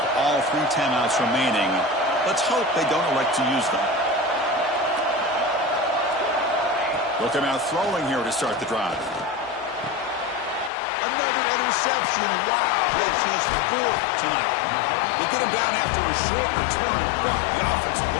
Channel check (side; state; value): right; drops out; at 10.7 s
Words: all 3 timeouts remaining. Let's hope they don't elect to use them. Look at out throwing here to start the drive. Another interception. Wow, that's his 4th tonight. They get him down after a short return, but the offense will